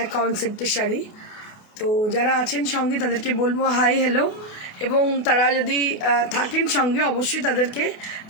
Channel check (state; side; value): late; right; 28 ms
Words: কনসেপ্টের শাড়ি। তো যারা আছেন সঙ্গে তাদেরকে বলবো হাই হ্যালো, এবং তারা যদি থাকেন সঙ্গে অবশ্যই তাদেরকে